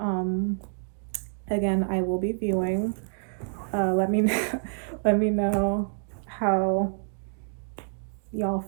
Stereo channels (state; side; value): silent; left; digital silence